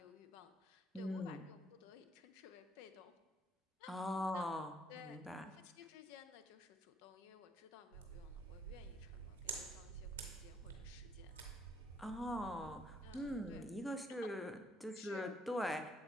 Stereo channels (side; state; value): both; normal; correlation 0.68